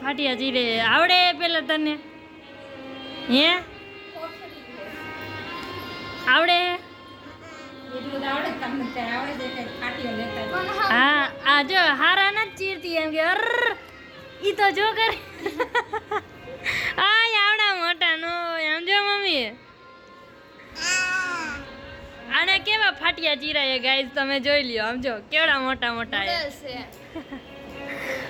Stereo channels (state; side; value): identical; both; correlation 1.00